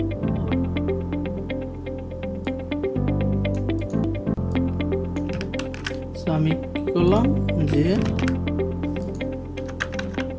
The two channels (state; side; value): identical; both; correlation 1.00